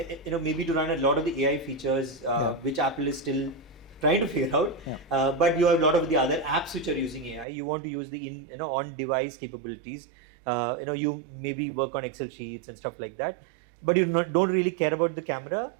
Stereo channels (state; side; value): drops out; left; at 7.5 s